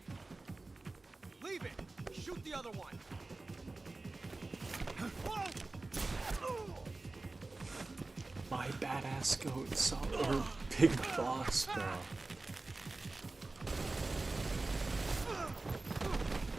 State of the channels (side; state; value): left; quieter; 3.3 dB